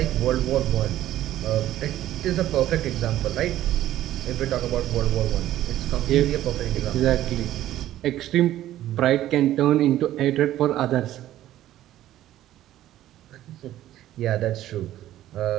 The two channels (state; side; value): quieter; left; 13.5 dB